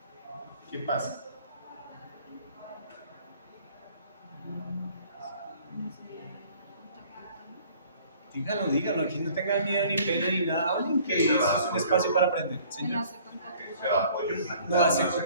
¿Qué pasa? Díganlo, aquí no tengan miedo ni pena ni nada, hablen que eso es un espacio para aprender. Señor. Que sea apoyo plantar, No hace no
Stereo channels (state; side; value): inverted; both; correlation -0.54